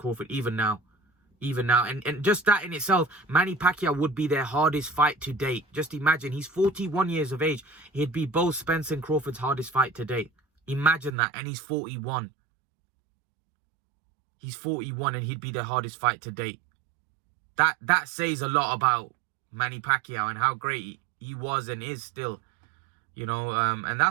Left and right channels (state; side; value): drops out; left; at 11.2 s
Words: even now. And just that in itself, Manny Pacquiao would be their hardest fight to date. Just imagine, he's 41 years of age. He'd be both Spencer and Crawford's hardest fight to date. Imagine that. And he's 41. He's 41 and he'd be their hardest fight to date. That says a lot about Manny Pacquiao and how great he was and is still. You know, and